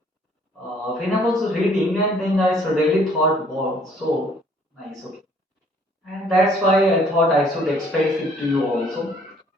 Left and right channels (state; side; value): normal; both; correlation 0.60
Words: I was reading, and then I suddenly thought, wow, so nice, okay, and that's why I thought I should express it to you also.